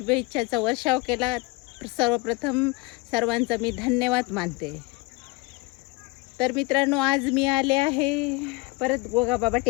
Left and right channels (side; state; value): right; quieter; 23.4 dB